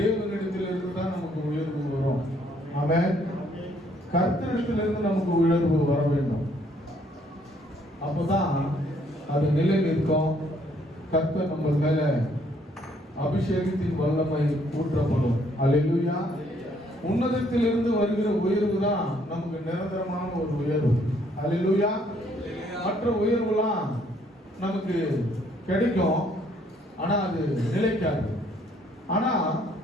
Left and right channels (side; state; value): both; normal; correlation 0.66